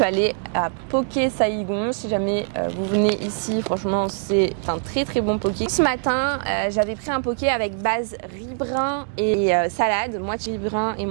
allée à Poké Saigon. Si jamais vous venez ici, franchement, c'est un très bon poké. Ce matin, j'avais pris un poké avec base riz brun et salade, moitié riz brun et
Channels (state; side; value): silent; left; digital silence